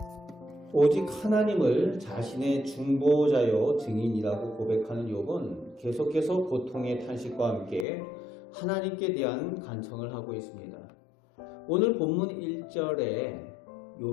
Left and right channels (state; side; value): drops out; right; at 7.9 s